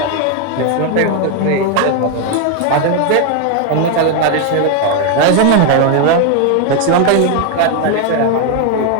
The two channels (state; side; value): different; both; correlation 0.01